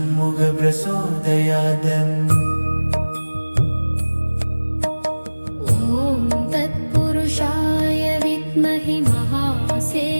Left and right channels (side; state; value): both; inverted; correlation -1.00